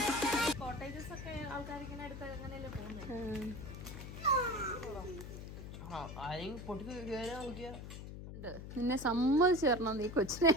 കോട്ടേജസ് ഒക്കെ ആൾക്കാരിങ്ങനെ അടുത്ത് അങ്ങനെയല്ലേ പോകുന്നത്. നിന്നെ സമ്മതിച്ചു തരണം, നീ കൊച്ചിനെ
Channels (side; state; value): left; noise; hum, 10 dB below the sound